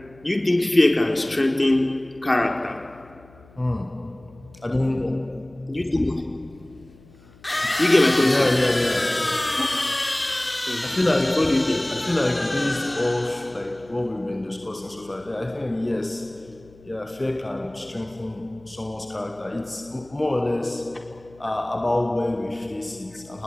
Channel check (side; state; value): left; noise; hum, 25 dB below the sound